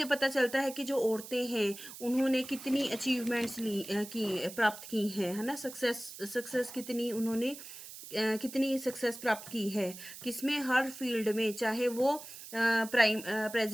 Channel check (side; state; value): right; noise; hiss, 13 dB below the sound